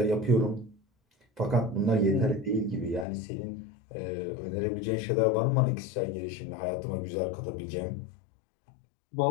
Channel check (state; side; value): drops out; right; at 3.1 s